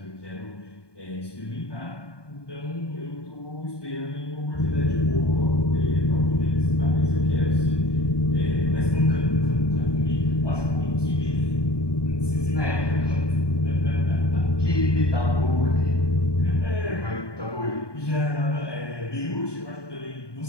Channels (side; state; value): right; late; 1.2 ms